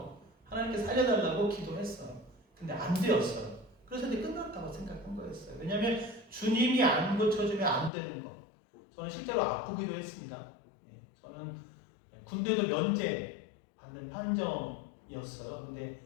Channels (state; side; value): drops out; right; at 7.9 s